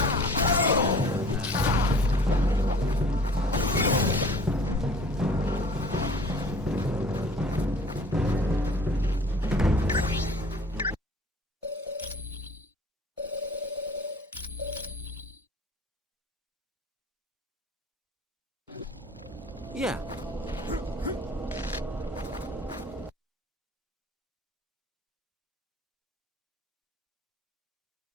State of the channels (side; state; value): both; normal; correlation 0.48